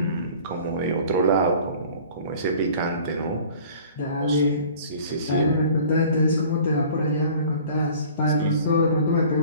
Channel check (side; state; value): both; inverted; correlation -0.48